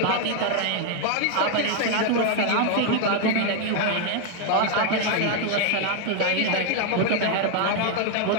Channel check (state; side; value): different; both; correlation 0.00